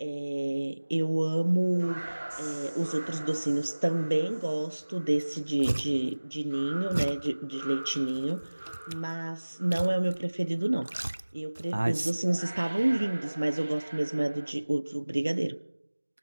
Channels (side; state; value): both; inverted; correlation -1.00